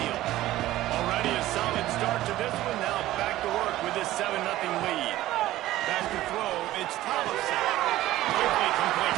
Already a solid start to this one. Now back to work with this 7-0 lead. Back to throw. It's Thompson. Quickly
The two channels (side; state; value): left; quieter; 15.4 dB